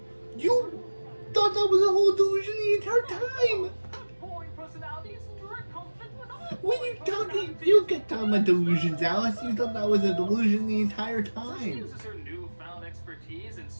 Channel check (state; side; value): inverted; both; correlation -1.00